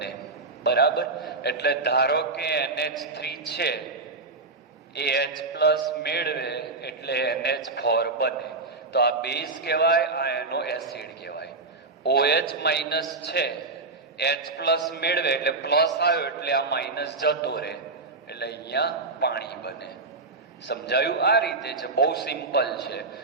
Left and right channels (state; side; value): quieter; left; 3.6 dB